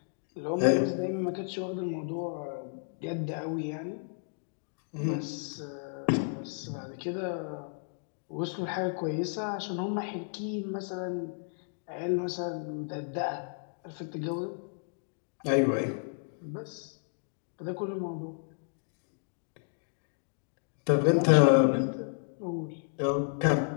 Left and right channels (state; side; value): silent; right; digital silence